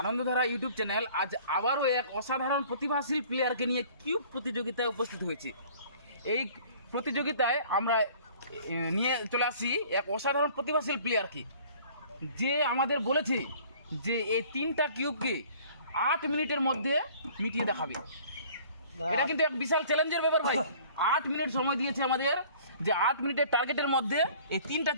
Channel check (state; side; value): inverted; both; correlation -0.51